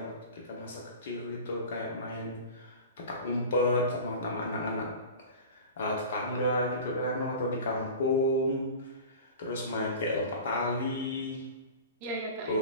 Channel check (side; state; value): both; inverted; correlation -0.35